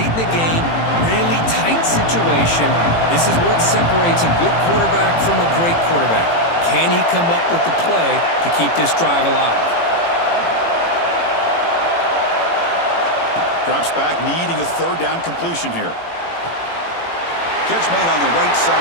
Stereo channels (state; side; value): late; right; 18 ms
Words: in the game, really tight situation. This is what separates a good quarterback from a great quarterback. Can he come up with the play to keep this drive alive? Drops back, needing a 3rd down completion here. Catch made on the right